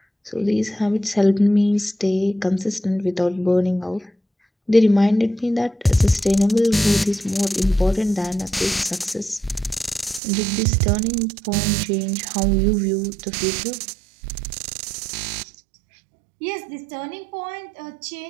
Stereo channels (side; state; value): left; drops out; at 10.2 s